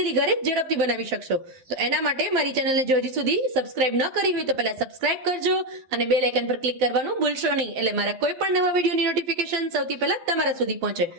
ઘરે ઝડપથી બનાવી શકશો. તો એના માટે મારી ચેનલને જો હજી સુધી સબસ્ક્રાઇબ ન કરી હોય તો પહેલા સબસ્ક્રાઇબ કરજો અને બેલ આઇકન પર ક્લિક કરવાનું ભૂલશો નહીં, એટલે મારા કોઈ પણ નવા વિડીયોની નોટિફિકેશન સૌથી પહેલા તમારા સુધી પહોંચે.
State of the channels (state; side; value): late; left; 12 ms